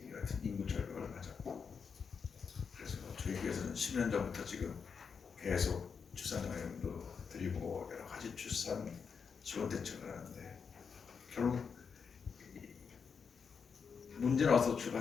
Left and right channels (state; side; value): quieter; right; 6.0 dB